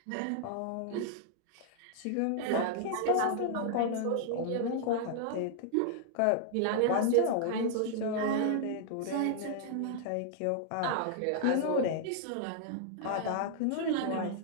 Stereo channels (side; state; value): both; different; correlation -0.01